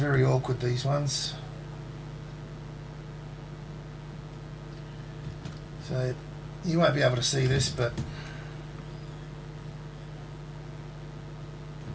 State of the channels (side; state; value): both; identical; correlation 1.00